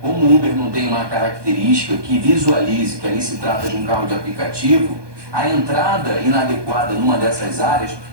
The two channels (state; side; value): late; left; 1.2 ms